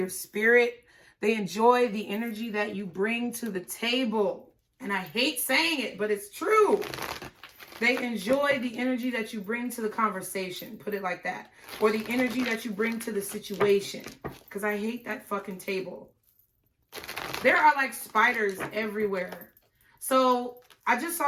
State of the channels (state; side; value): identical; both; correlation 1.00